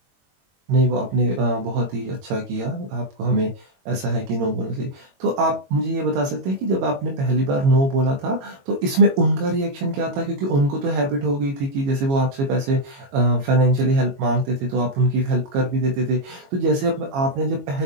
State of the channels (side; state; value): left; late; 22 ms